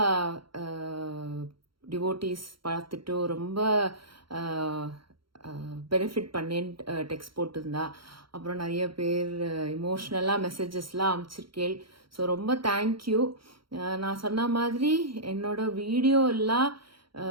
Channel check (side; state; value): left; late; 0.73 ms